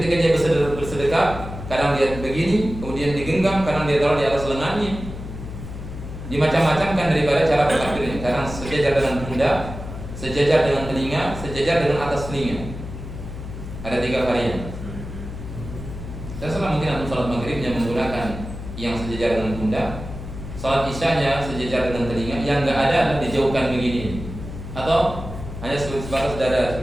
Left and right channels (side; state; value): left; noise; hum, 10 dB below the sound